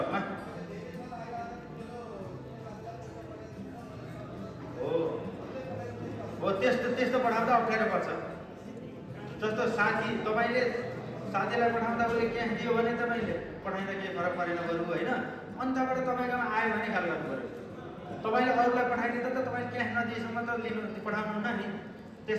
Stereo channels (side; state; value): both; identical; correlation 1.00